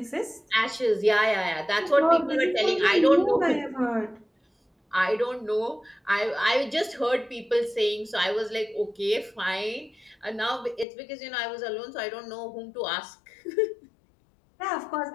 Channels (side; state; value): right; drops out; at 10.9 s